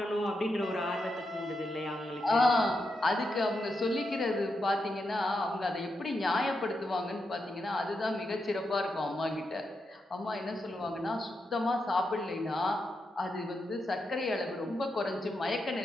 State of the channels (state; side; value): normal; both; correlation 0.85